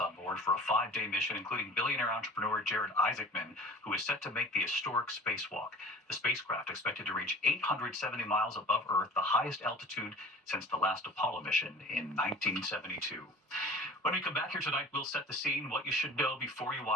board for a 5-day mission, including billionaire entrepreneur Jared Isaacman, who is set to make the historic spacewalk. The spacecraft expected to reach 870 miles above Earth, the highest altitude since the last Apollo mission in 1972. When we come back here tonight, we'll set the scene, what you should know before you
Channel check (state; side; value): normal; both; correlation 0.41